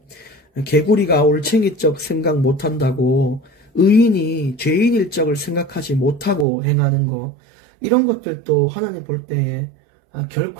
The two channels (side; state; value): left; drops out; at 6.5 s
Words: 개구리가 올챙이적 생각 못한다고 의인이 죄인일 적을 생각하지 못하고 행하는 거, 이런 것들도 하나님 볼 때에